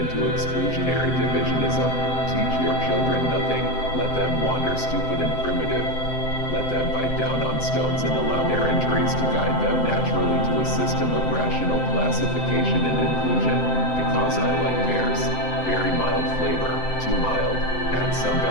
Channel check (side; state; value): right; late; 7.8 ms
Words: exclusionary divisionism. Teach your children nothing, let them wander stupid and primitive. Let them bite down on stones and allow their injuries to guide them naturally to a system of rational classification and inclusion. Because I like pears, very mild flavor, too mild, add some